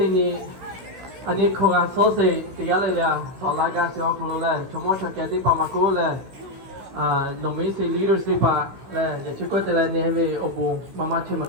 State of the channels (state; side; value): late; left; 16 ms